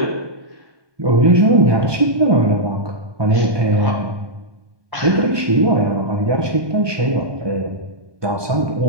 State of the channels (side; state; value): left; late; 1.2 ms